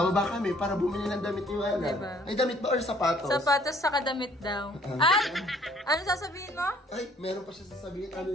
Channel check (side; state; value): both; normal; correlation 0.59